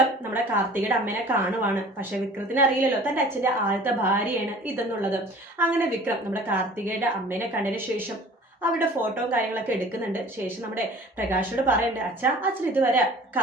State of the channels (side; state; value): both; normal; correlation 0.46